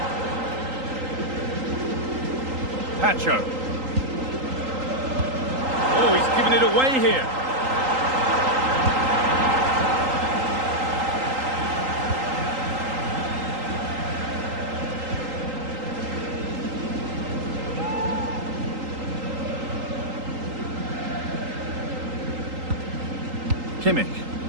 Pacho. Oh, he's given it away here. Kimmich.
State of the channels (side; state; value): left; late; 3.8 ms